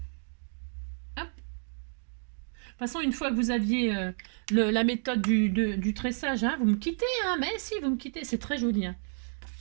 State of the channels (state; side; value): silent; left; digital silence